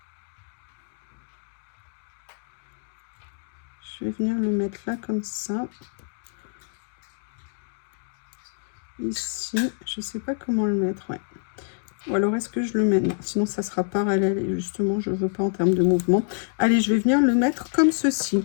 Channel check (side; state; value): right; silent; 61 dB below the other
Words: Je vais venir le mettre là comme ça. Ici, je sais pas comment le mettre, ouais. Ou alors est-ce que je le mets? Non, sinon ça sera parallèle et justement je veux pas en termes de mouvement. Allez, je vais venir le mettre comme ceci.